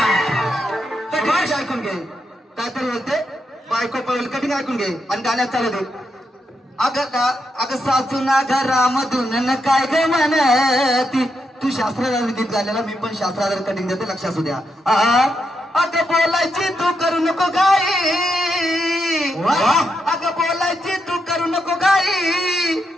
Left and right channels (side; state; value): both; normal; correlation 0.82